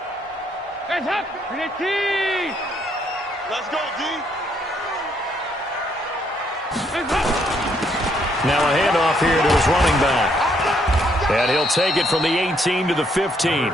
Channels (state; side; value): normal; both; correlation 0.71